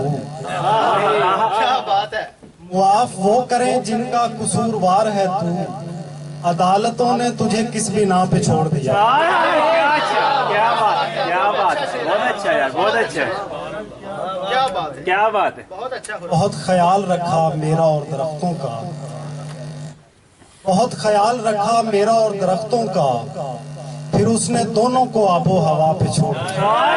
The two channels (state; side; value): identical; both; correlation 1.00